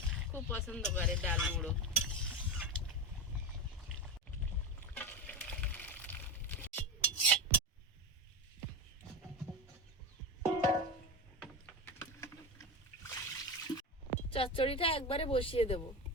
খুব পছন্দ করে ডাল মুড়ো। চচ্চড়িটা একবারে বসিয়ে দেব।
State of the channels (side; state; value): both; normal; correlation 0.21